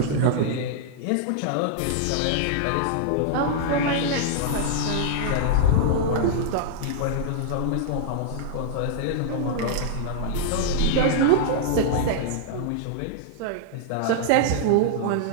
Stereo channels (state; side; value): different; both; correlation -0.01